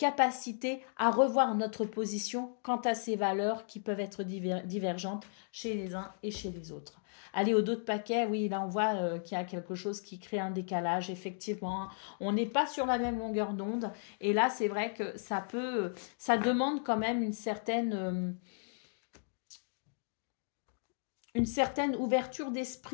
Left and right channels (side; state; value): right; silent; digital silence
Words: à revoir notre position quant à ces valeurs qui peuvent être divergentes chez les uns et chez les autres. Allez, au dos de paquet, oui, là on voit qu'il y a quelque chose qui crée un décalage, effectivement. On n'est pas sur la même longueur d'onde. Et là, c'est vrai que ça demande quand même une certaine ouverture